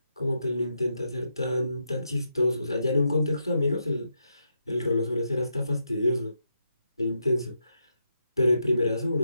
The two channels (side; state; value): both; inverted; correlation -0.83